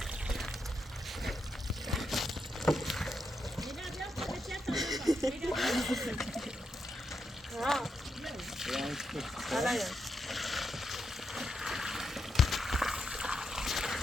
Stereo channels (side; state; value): both; normal; correlation 0.83